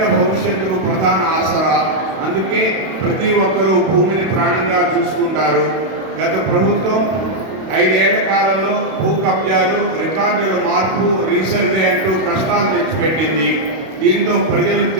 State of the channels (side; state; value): left; late; 32 ms